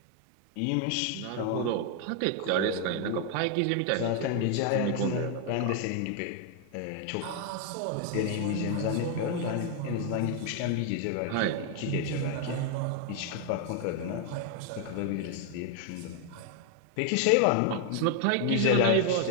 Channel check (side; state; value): both; different; correlation 0.00